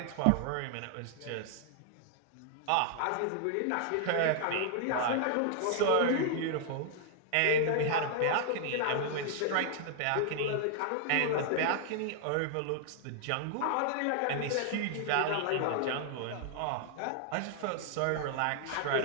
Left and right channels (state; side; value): different; both; correlation 0.00